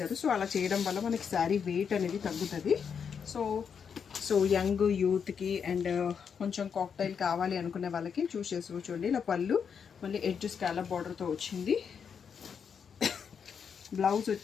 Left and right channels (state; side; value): quieter; right; 6.8 dB